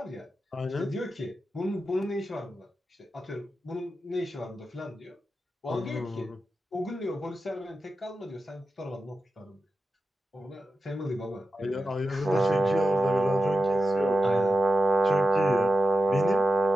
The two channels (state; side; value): normal; both; correlation 0.92